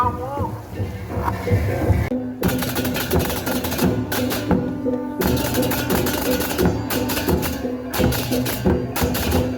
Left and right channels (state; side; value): identical; both; correlation 1.00